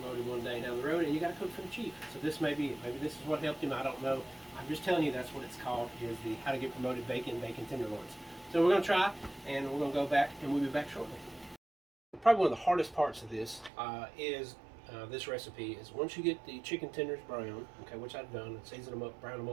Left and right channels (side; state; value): left; drops out; at 13.7 s